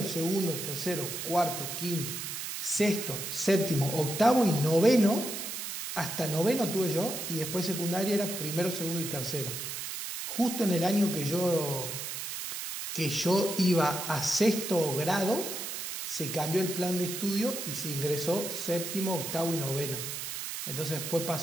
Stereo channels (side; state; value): right; noise; hiss, 5 dB below the sound